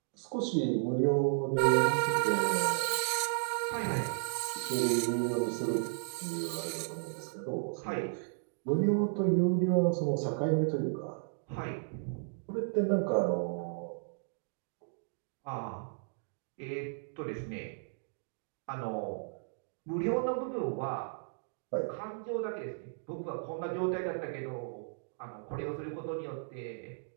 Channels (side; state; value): left; silent; digital silence